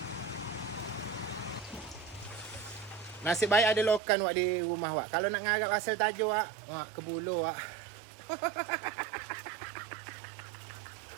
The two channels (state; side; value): drops out; left; at 4.0 s